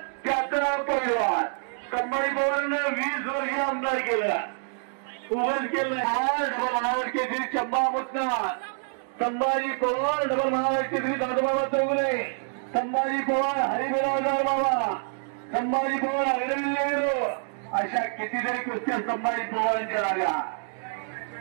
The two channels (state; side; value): silent; left; digital silence